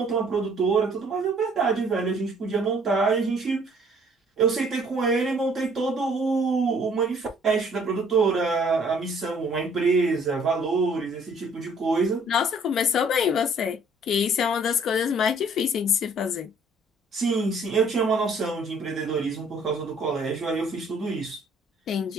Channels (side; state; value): both; normal; correlation 0.59